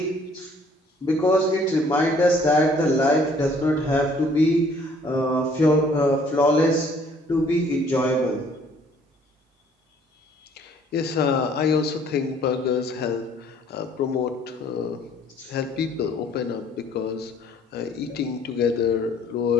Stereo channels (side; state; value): both; normal; correlation 0.59